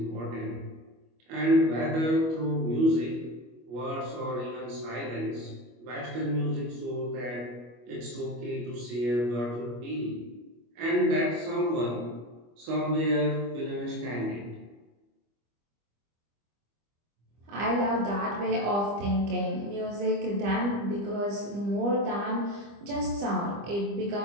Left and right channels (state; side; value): late; left; 25 ms